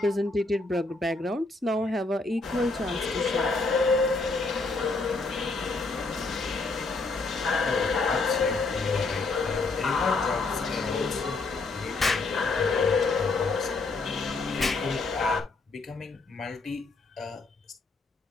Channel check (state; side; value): quieter; right; 3.6 dB